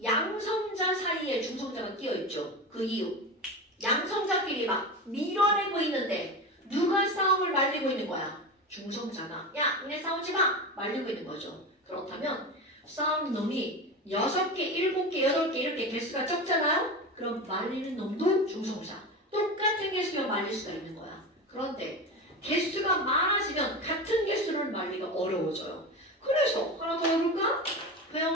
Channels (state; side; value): normal; both; correlation 0.25